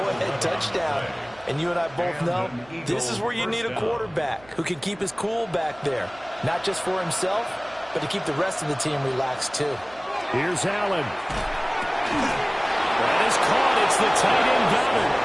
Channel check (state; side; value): noise; right; hum, 25 dB below the sound